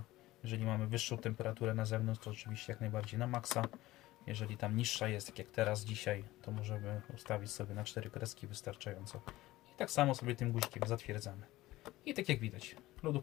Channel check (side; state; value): right; quieter; 17.4 dB